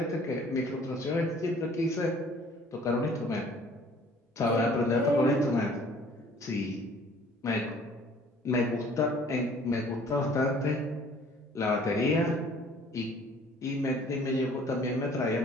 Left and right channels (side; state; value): both; normal; correlation 0.54